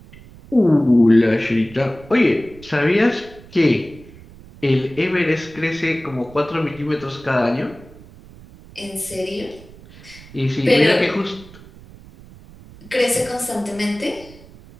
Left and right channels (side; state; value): right; noise; rumble, 21 dB below the sound